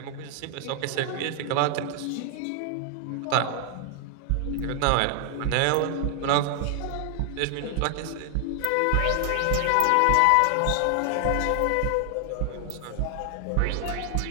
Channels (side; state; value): both; different; correlation 0.00